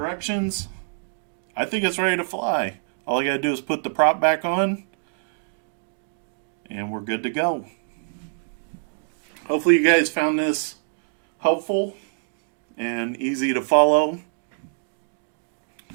I think it's ready to fly. All I gotta do is put the prop back on, and we're good to go. Hopefully you guys found this helpful and easy to follow.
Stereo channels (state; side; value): silent; left; digital silence